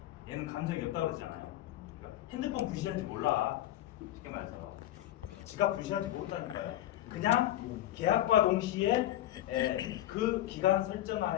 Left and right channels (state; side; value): quieter; right; 13.6 dB